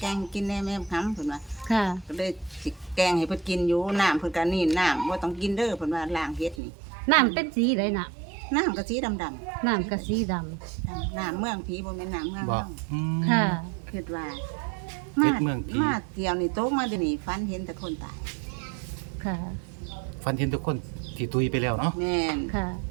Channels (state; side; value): drops out; left; at 6.6 s